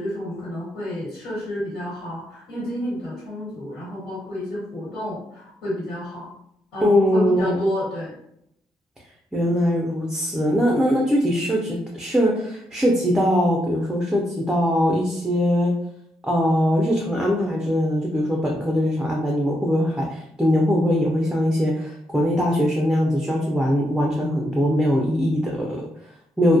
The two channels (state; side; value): normal; both; correlation 0.80